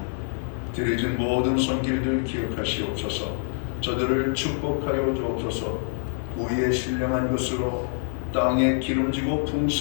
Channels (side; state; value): right; silent; digital silence